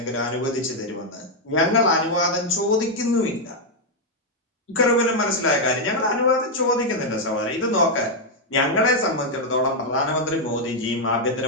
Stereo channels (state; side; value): normal; both; correlation 0.00